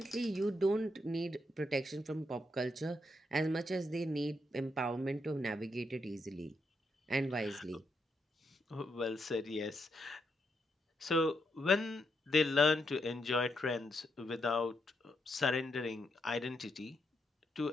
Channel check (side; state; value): both; normal; correlation 0.80